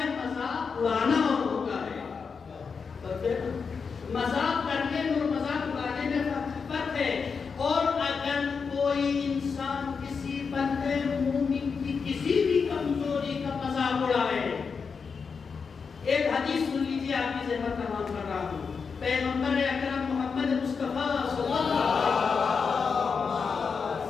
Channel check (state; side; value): quieter; right; 5.5 dB